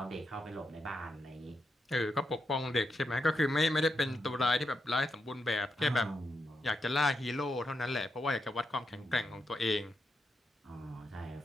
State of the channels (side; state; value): both; normal; correlation 0.84